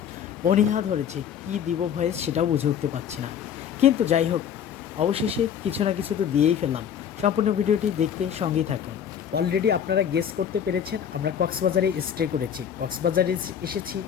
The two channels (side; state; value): right; quieter; 8.6 dB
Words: অনীহা ধরেছে, কি দিব ভয়েস সেটাও বুঝে উঠতে পারছি না। কিন্তু যাই হোক, অবশেষে কিছু না কিছু তো দিয়েই ফেললাম। সম্পূর্ণ ভিডিওটি দেখতে সঙ্গেই থাকুন। অলরেডি আপনারা গেস করতে পেরেছেন, আমরা কক্সবাজারে স্টে করেছি, কক্সবাজারে এসেছি।